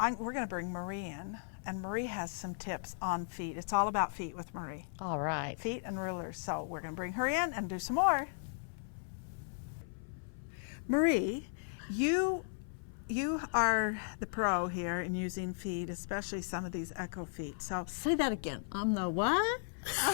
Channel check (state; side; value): silent; right; 54 dB below the other